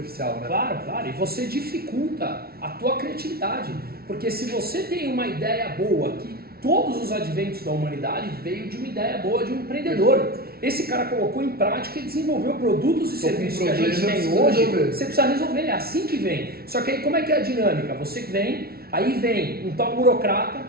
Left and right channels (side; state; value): left; late; 0.44 ms